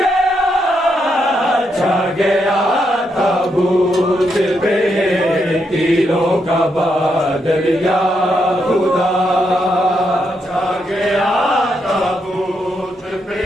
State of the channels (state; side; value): normal; both; correlation 0.80